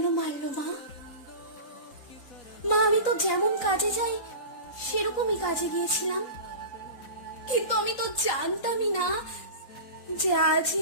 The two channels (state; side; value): late; right; 3.9 ms